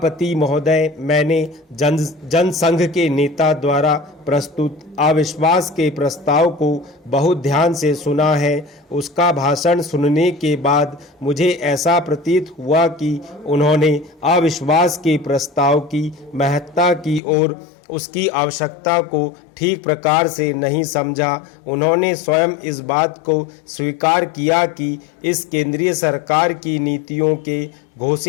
महोदय, मैंने जनसंघ के नेता द्वारा प्रस्तुत अविश्वास के प्रस्ताव को बहुत ध्यान से सुना है। उसका भाषण सुनने के बाद मुझे ऐसा प्रतीत हुआ कि उन्होंने अविश्वास के प्रस्ताव की महत्ता की और उसकी आवश्यकता को ठीक प्रकार से नहीं समझा। उन्होंने स्वयं इस बात को स्वीकार किया कि इस केंद्रीय सरकार की नीतियों के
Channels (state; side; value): drops out; right; at 17.2 s